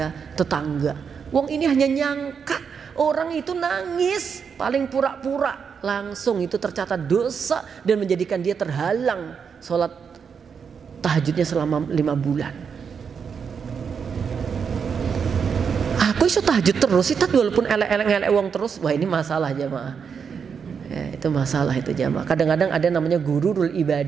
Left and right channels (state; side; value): quieter; left; 6.5 dB